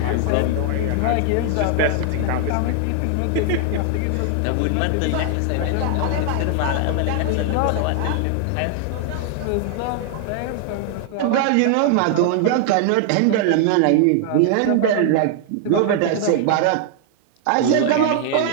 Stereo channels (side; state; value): both; different; correlation 0.00